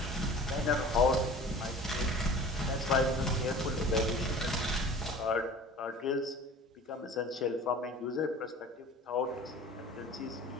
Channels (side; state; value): both; normal; correlation 0.42